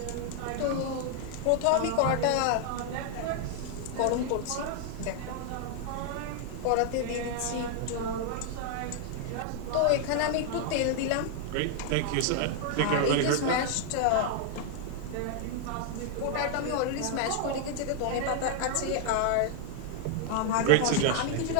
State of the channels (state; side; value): different; both; correlation 0.00